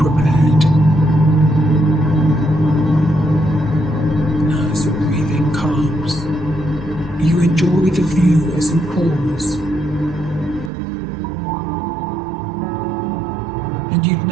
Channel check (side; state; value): left; drops out; at 10.7 s